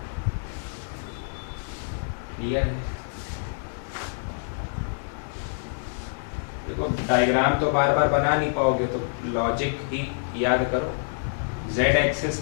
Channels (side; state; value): right; silent; digital silence